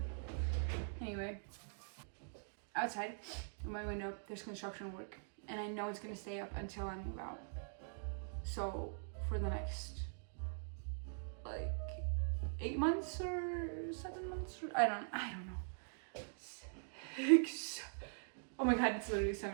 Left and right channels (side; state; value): left; silent; digital silence